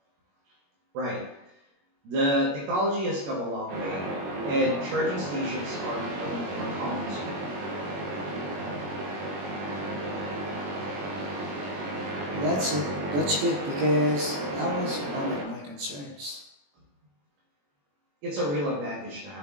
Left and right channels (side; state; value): left; late; 21 ms